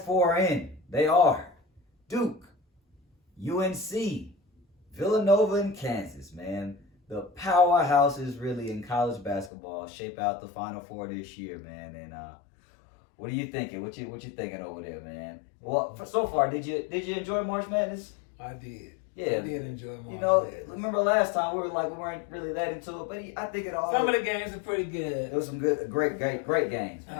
4 are in. They are Duke, UNC, Villanova, and Kansas, man. The powerhouses really in college basketball shape out the Final Four this year, man. And what are you thinking? What you thinking over there, man? Well, so far, did you enjoy March Madness? I did. Yeah, I did enjoy March Madness. Remember last time we weren't really that into it, but I think it all. Some of the games are pretty good. It was some great games.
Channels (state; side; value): drops out; right; at 9.5 s